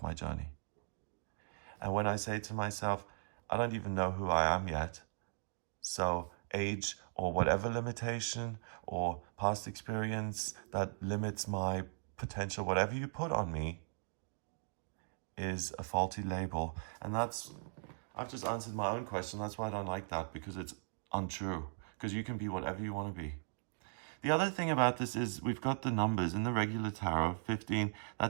my journey. And when I say to myself, I don't even know who I am yet, so age or whatever limitation or past experience that limits my potential, whatever you put on me, is a faulty label. And I've just answered my own question. That's why I don't like that, because it's untrue. Because you can be whatever you want to be. The other thing about this is we've got the numbers in the regular tarot. 15,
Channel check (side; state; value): left; silent; digital silence